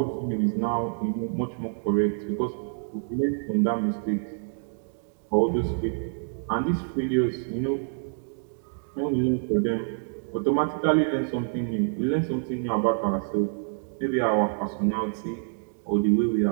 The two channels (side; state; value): left; silent; digital silence